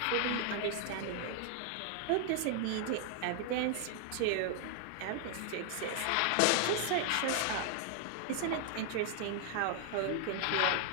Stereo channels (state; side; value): different; both; correlation 0.00